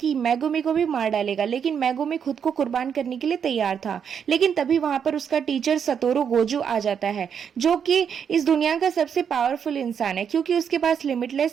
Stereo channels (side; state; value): left; quieter; 7.6 dB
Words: मेगुमी को भी मार डालेगा। लेकिन मेगुमी खुद को कुर्बान करने के लिए तैयार था। लेकिन तभी वहां पर उसका टीचर सतोरू गोजू आ जाता है, जो कि इस दुनिया का सबसे पावरफुल इंसान है क्योंकि उसके पास